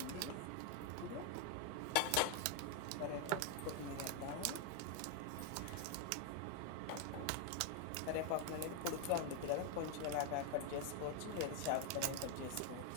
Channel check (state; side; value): different; both; correlation 0.01